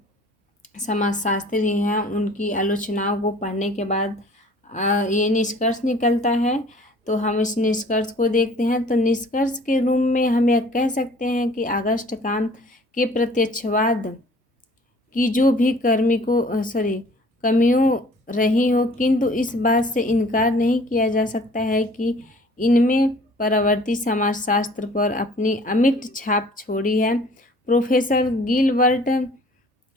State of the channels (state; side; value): normal; both; correlation 0.51